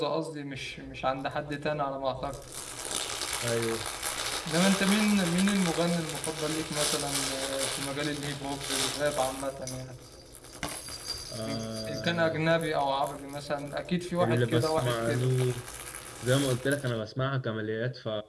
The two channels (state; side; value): identical; both; correlation 1.00